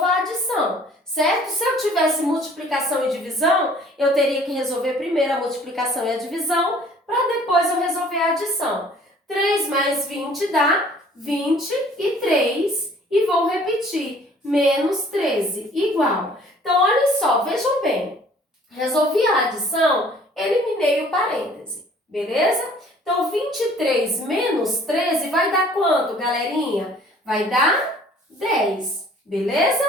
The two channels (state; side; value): normal; both; correlation 0.54